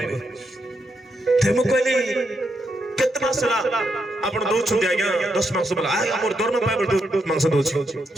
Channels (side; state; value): both; normal; correlation 0.81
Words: ते मो कहले केतना सला आपण दो छुंडी आगे 10 मांस बोला आ हमर दरमा पाइबल 10 मांस दोछि